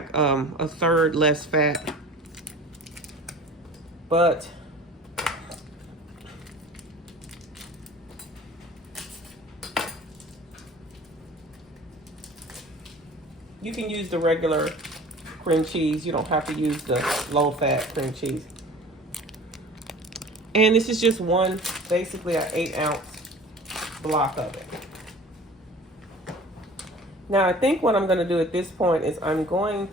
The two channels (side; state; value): both; normal; correlation 0.43